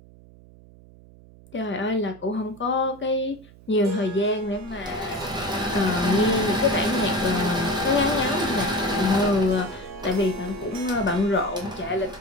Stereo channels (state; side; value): noise; right; hum, 23 dB below the sound